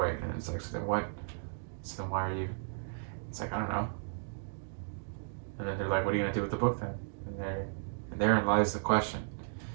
And it's like, so then what? So then why are you? It's like, I don't know. And then they're like, what are you gonna do with the book then? And therein lies the question.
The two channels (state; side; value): silent; left; digital silence